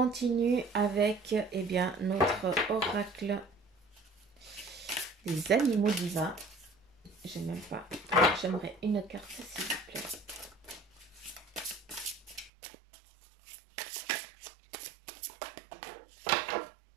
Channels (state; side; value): drops out; left; at 12.5 s